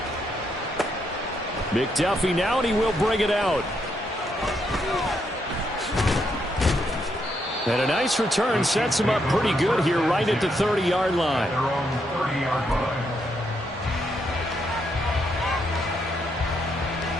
McDuffie now, and he will bring it out. And a nice return sets him up pretty good here right at the 30-yard line. Their own 30-yard line.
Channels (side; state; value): both; normal; correlation 0.77